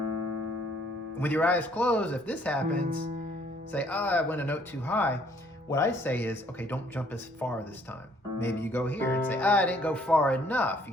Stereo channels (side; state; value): both; normal; correlation 0.62